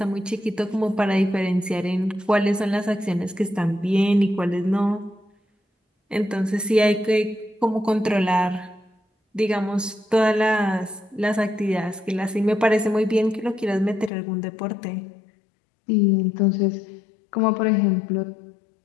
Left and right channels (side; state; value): right; drops out; at 14.1 s